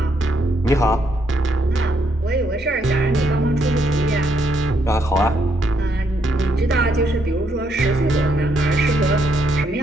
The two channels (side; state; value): both; normal; correlation 0.74